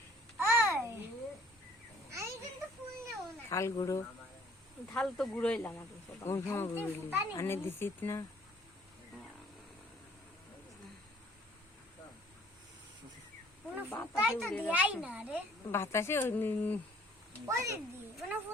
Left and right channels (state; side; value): normal; both; correlation 0.56